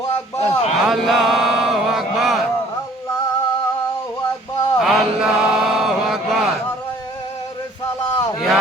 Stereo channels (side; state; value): both; normal; correlation 0.55